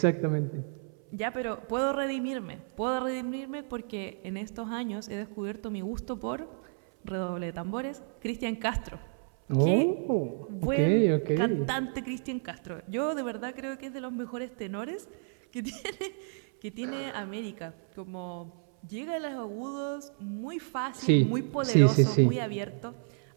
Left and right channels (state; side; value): silent; left; 57 dB below the other